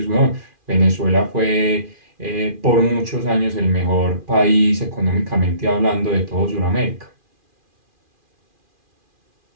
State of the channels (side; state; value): left; late; 2.4 ms